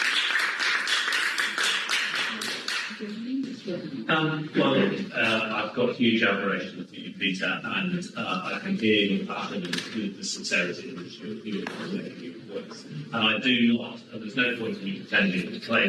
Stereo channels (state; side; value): identical; both; correlation 1.00